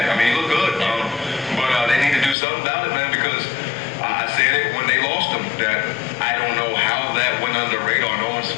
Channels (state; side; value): drops out; right; at 2.4 s